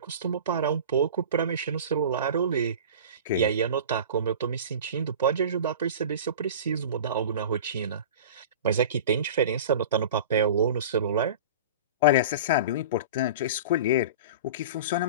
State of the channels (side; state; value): both; inverted; correlation -0.35